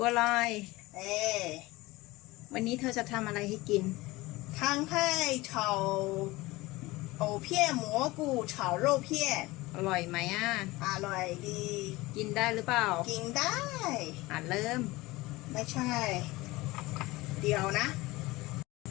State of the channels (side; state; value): right; quieter; 20.6 dB